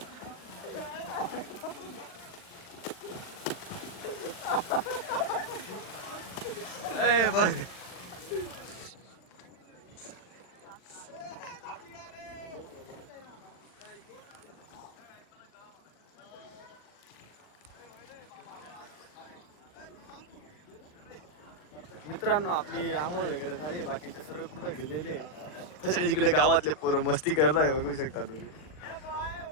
ए बघ मित्रांनो, आपली आंघोळ वगैरे झाली, बाकीचे सर्व पुढे गेलेले तसे इकडे गावातले पोरं मस्ती करताय, बघू शकता तुम्ही.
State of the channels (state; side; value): late; right; 39 ms